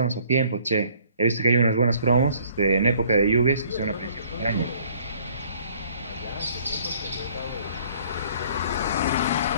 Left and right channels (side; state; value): both; inverted; correlation -0.58